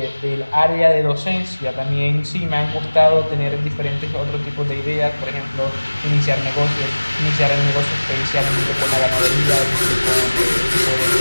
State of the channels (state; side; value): inverted; both; correlation -1.00